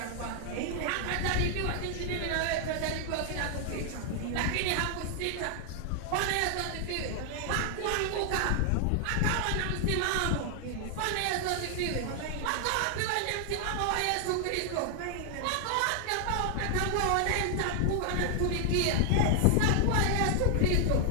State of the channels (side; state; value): both; different; correlation 0.00